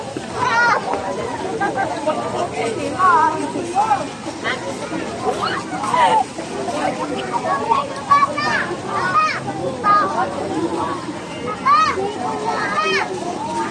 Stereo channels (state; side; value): identical; both; correlation 1.00